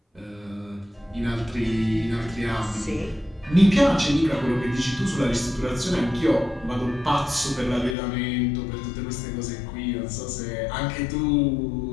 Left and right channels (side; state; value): right; drops out; at 8.0 s